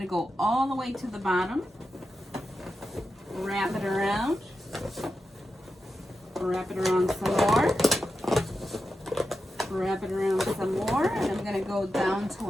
to go all the way to the bottom, wrap it around some more. Wrap it around some more, and I'm going to go down to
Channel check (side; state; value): both; normal; correlation 0.89